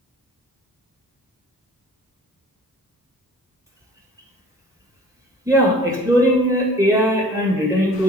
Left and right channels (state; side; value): normal; both; correlation 0.48